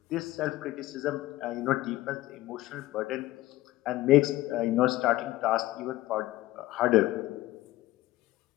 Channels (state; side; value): quieter; right; 16.8 dB